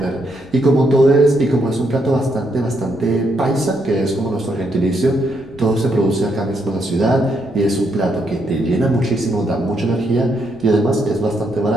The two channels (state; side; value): noise; left; rumble, 23 dB below the sound